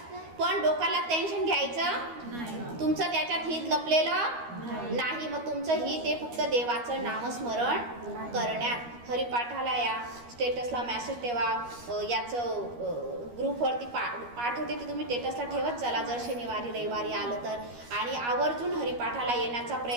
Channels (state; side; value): late; left; 13 ms